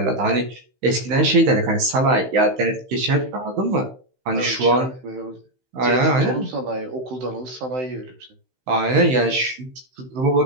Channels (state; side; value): late; left; 16 ms